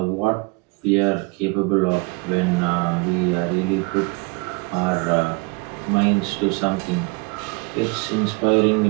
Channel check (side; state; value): left; quieter; 28.5 dB